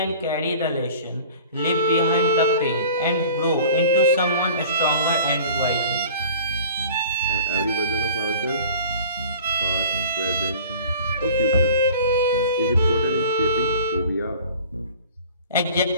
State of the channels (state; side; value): inverted; both; correlation -0.44